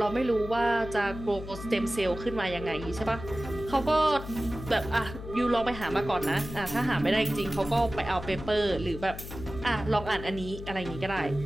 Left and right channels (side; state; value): left; noise; hum, 11 dB below the sound